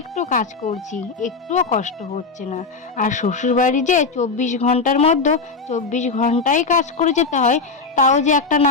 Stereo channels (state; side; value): quieter; right; 4.5 dB